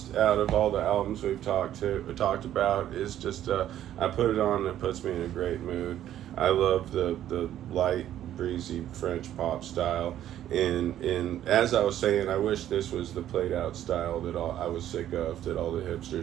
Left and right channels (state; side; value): quieter; left; 11.7 dB